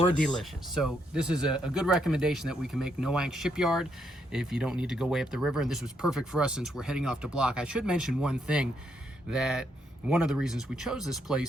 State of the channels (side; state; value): both; normal; correlation 0.76